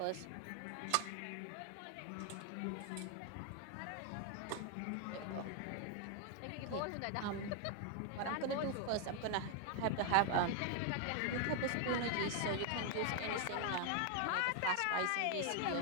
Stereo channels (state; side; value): different; both; correlation 0.00